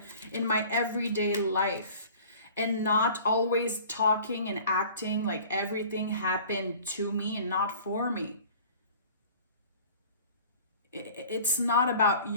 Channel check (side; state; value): both; inverted; correlation -0.46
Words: in my everyday life and not always talking and acting like everything happened to me and not for me? It's not about